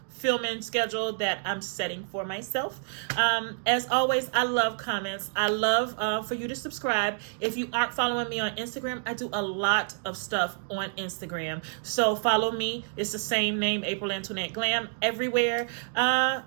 filming schedule that I'm setting for myself. As always, I love comments. I love for you to subscribe. If you aren't following me on Instagram, I do a lot of stuff on Instagram. So follow me. It's the same name, April Antoinette Glam, everywhere.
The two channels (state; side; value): silent; left; digital silence